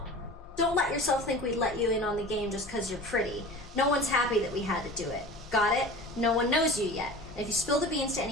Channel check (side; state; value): left; noise; hum, 21 dB below the sound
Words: let yourself think we'd let you in on the game just because you're pretty. No one's happy that we had to do it. Got it? No one knows you yet. And if you spill the beans to